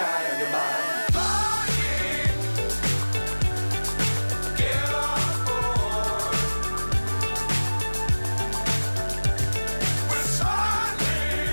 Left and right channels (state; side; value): inverted; both; correlation -1.00